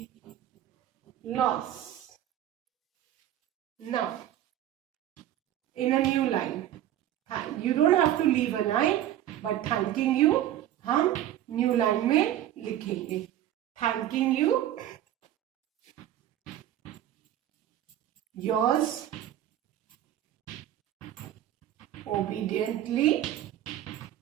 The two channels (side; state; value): left; quieter; 12.2 dB